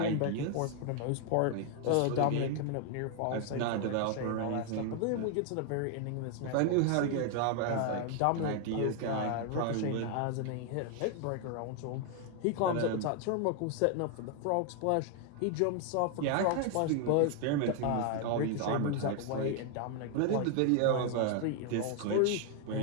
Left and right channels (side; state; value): both; different; correlation 0.00